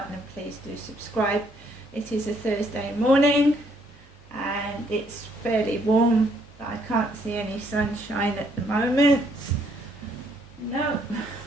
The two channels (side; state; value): both; normal; correlation 0.68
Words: and please do subscribe. It is a Thursday morning and it's fairly warm, but I can't see any sunshine at the moment. No,